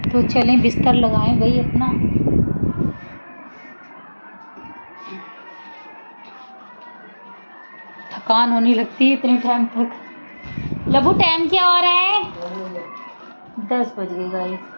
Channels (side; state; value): both; inverted; correlation -1.00